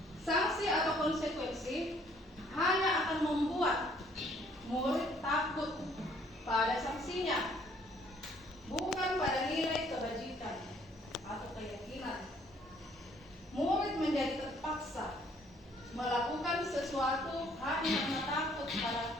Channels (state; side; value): normal; both; correlation 0.62